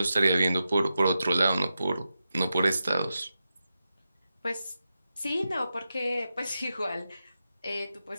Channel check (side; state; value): both; inverted; correlation -0.89